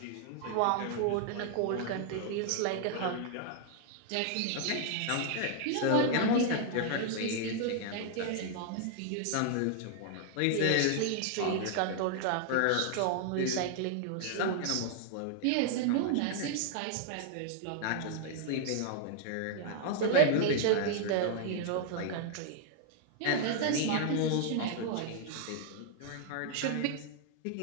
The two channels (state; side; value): different; both; correlation -0.01